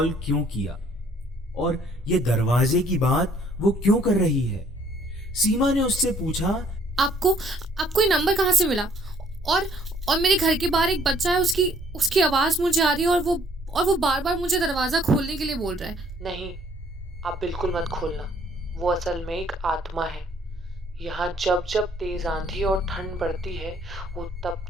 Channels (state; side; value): normal; both; correlation 0.62